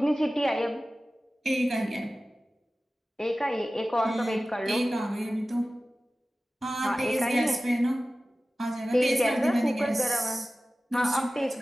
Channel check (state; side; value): normal; both; correlation 0.96